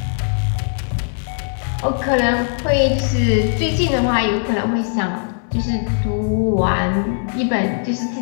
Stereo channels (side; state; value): right; silent; digital silence